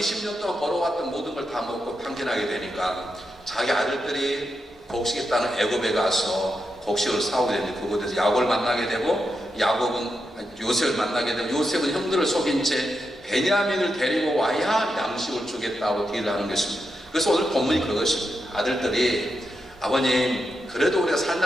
동안 벌어왔던 모든 걸 다 먹고 탕진하게 되니까 자기 아들들이 곡식에 따는 애굽에 가서 곡식을 사오게 되는데, 그곳에서 야곱을 만나게 되고, 야곱은 요셉을 만나게 되고, 요셉은 형들을 속인 채 베냐민을 데리고 와야 양식을 주겠다고 딜을 하는 것입니다. 그래서 오늘 본문이 그것입니다. 아들들이 아버님 그래도 우리가 살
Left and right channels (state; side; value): normal; both; correlation 0.86